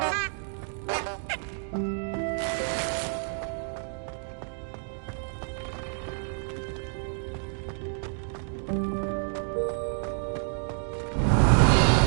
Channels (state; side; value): silent; left; digital silence